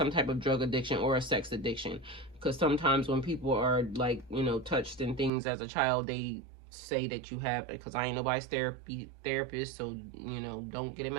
type of drug addiction or a sex addiction. Because sometimes when people are like, you know, touched in things as a child, they say that you have, because I ain't nobody's therapist, so, you know, don't get it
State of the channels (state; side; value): drops out; left; at 5.3 s